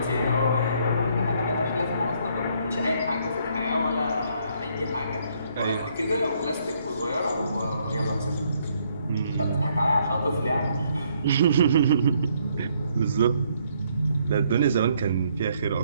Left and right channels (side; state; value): both; inverted; correlation -0.69